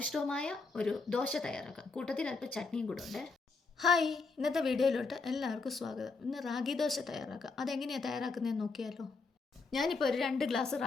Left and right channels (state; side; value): quieter; right; 4.1 dB